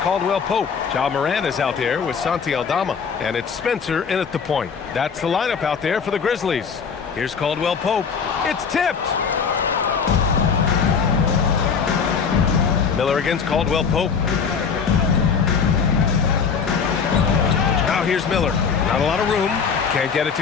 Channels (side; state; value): right; quieter; 6.2 dB